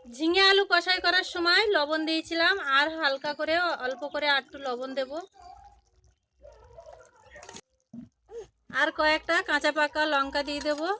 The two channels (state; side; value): identical; both; correlation 1.00